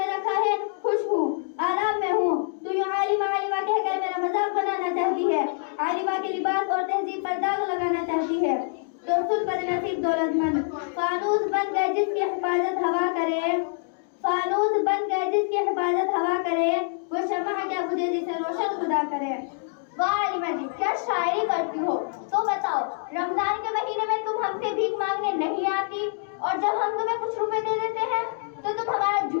رکھا ہے خوش ہوں، آرام میں ہوں، تو یوں عالمہ عالمہ کہہ کر میرا مذاق بنانا چاہتی ہے، عالمہ کے لباس اور تہذیب پر داغ لگانا چاہتی ہے۔ تو سن بدنصیب دولت مند، فانوس بن گئے جس کی حفاظت ہوا کرے، فانوس بن گئے جس کی حفاظت ہوا کرے، وہ شمع کیا بجھے جسے روشن خدا کرے۔ واہ عالمہ جی، کیا شاعری کرتی ہو۔ تو بتاؤ، رمضان کے مہینے میں تم ہم سے بھیک مانگنے نہیں آتی، اور جب ہم تمہیں کچھ روپے دے دیتے ہیں تو تم ہمارا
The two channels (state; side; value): silent; right; digital silence